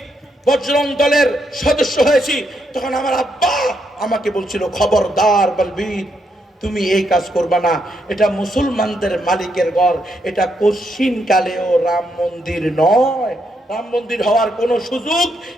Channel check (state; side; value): normal; both; correlation 0.78